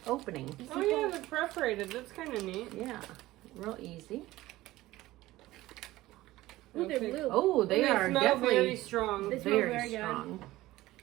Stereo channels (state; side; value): quieter; left; 17.2 dB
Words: opening. Oh yeah, they're perforated. That's kind of neat. Yeah, real easy. Ooh, they're Okay. blue. Oh, they And are smell definitely very strong. They smell very very good. strong.